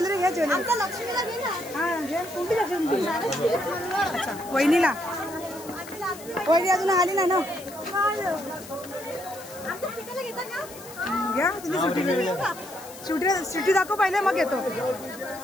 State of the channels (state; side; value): noise; left; hiss, 16 dB below the sound